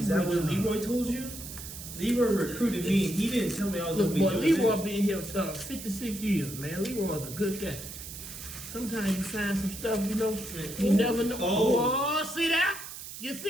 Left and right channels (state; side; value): noise; right; hiss, 11 dB below the sound